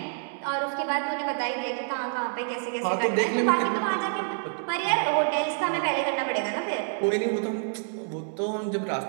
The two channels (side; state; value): left; silent; 60 dB below the other